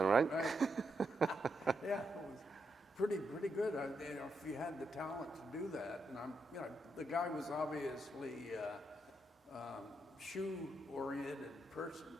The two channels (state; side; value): normal; both; correlation 0.81